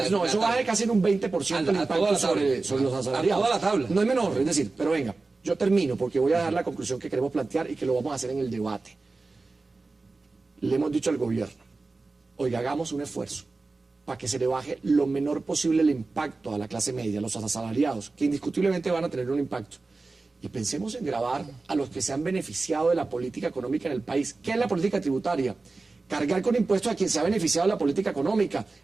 no, eso baja casi en un 20% el impacto sobre los asalariados. A toda la tabla. No es menor, es decir, pero venga, yo termino porque voy a dar la conclusión que queremos plantear y que lo vamos a hacer en el debate. Le hemos dicho al gobierno, oiga, hagamos un esfuerzo para que se le baje lo menor posible el impacto a la clase media, a los asalariados, que indiscutiblemente van a tener un impacto. Y pensemos en gravar a los que se han beneficiado de la política económica en el país. ¿Qué es la política tributaria? Cargar con impuestos a quien se ha beneficiado de la política económica,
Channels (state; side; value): quieter; left; 3.6 dB